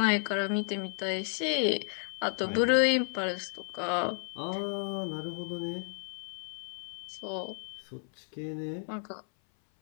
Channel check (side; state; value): right; silent; 56 dB below the other